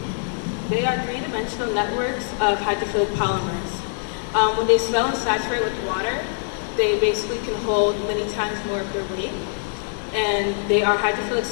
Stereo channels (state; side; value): silent; right; digital silence